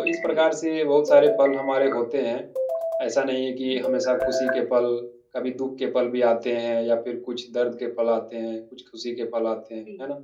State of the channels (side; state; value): both; identical; correlation 1.00